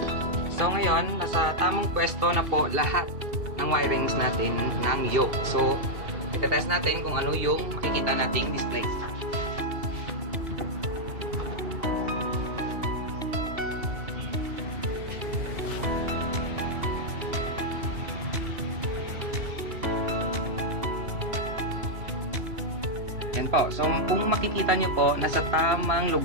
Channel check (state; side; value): late; left; 2.7 ms